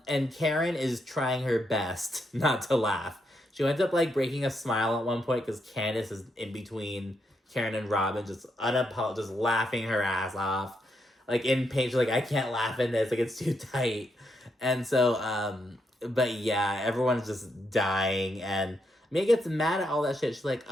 Karen is trying her best not to laugh. She ends up, like, breaking a smile at one point because Candace is in between Karen and Robin, just just laughing her ass off. Like, in pain, she's like, I can't laugh in this. Like, it's too tight. And so, but yeah, everyone's just dying. And Mia gets mad at all that shit. She's like,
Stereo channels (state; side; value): normal; both; correlation 0.80